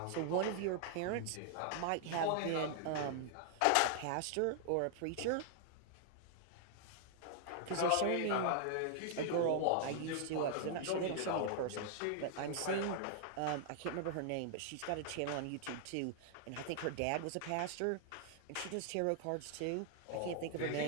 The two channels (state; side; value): different; both; correlation -0.01